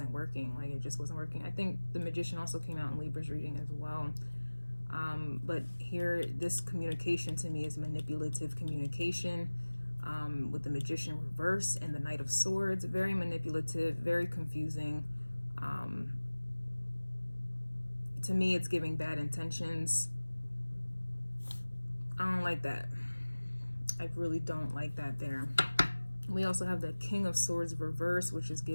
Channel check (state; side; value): inverted; both; correlation -1.00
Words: working. Like, it just wasn't working. I think the Magician also came out in Libra's reading as well. But here, this communication to me is manipulative communication, with the Magician reverse and the Knight of Swords. Very manipulative, very confusing. To me, it's giving bad intentions. I don't like that. I really don't like that there. We also have the King of Swords reverse, which is